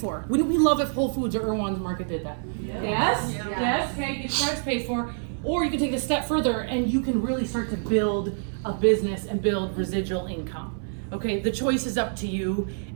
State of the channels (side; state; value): left; silent; 61 dB below the other